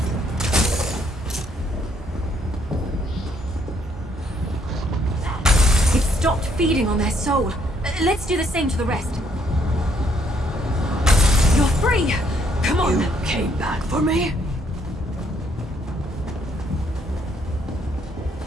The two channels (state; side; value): normal; both; correlation 0.69